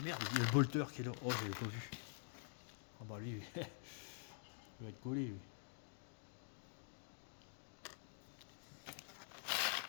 merde, il y a le bolter qui est là. Oh, je l'ai pas vu. Oh bah lui, il va être collé lui.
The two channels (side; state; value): right; silent; digital silence